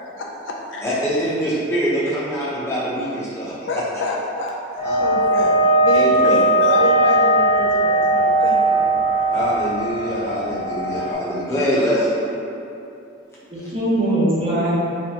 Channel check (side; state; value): both; normal; correlation -0.03